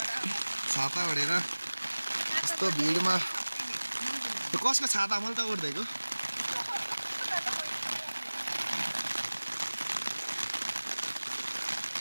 छाता ओढेर यस्तो भिडमा कसको छाता मैले त ओढ्दैको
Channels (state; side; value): inverted; both; correlation -1.00